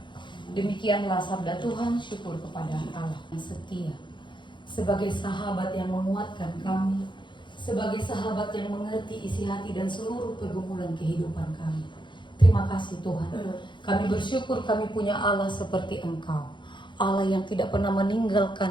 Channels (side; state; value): right; late; 0.23 ms